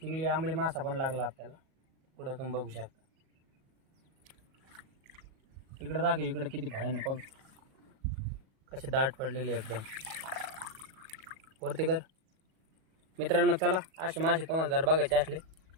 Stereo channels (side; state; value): left; late; 37 ms